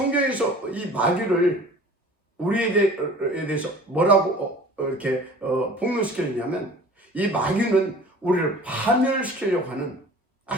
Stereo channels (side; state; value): both; normal; correlation 0.45